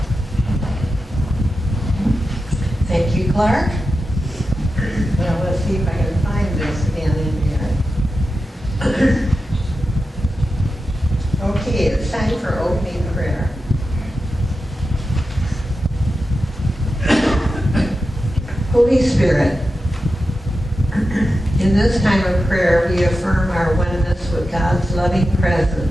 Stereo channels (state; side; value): normal; both; correlation 0.91